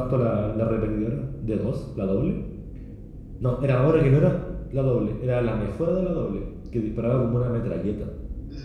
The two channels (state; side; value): identical; both; correlation 1.00